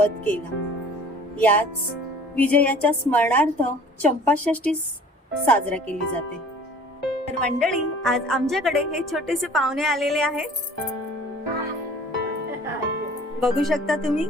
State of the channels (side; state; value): both; normal; correlation 0.49